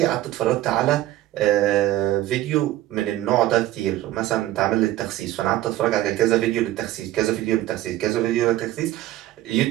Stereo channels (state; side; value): quieter; left; 15.0 dB